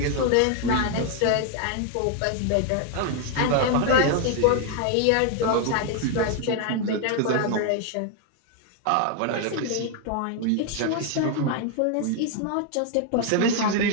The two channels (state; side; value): different; both; correlation 0.00